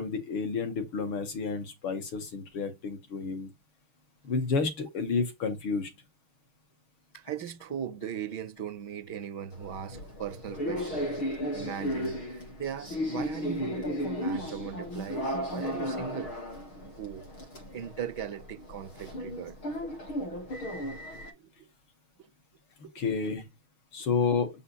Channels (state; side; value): late; right; 6.3 ms